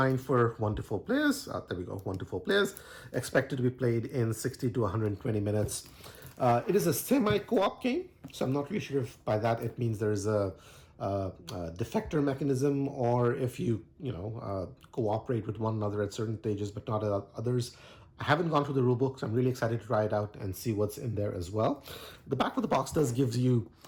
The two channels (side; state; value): both; identical; correlation 1.00